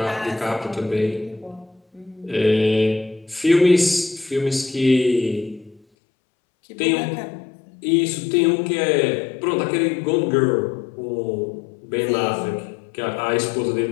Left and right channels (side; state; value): right; drops out; at 5.8 s